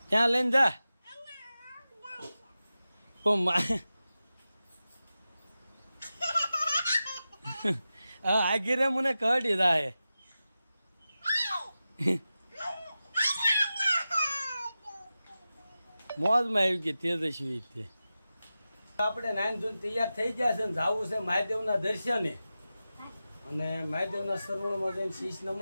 ક્યાં લઈને જા? આગીરે મને કાઢી દાહે. મોજમાં આવી ગઈ તેજસ્વી. તે આપણે નાઈન ધોન તૈયાર થઈ ગયા છે ને જવું છે મહાદેવના દર્શને. અને મહાદેવના સરોવરમાં જઈને શીશ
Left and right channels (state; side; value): inverted; both; correlation -0.93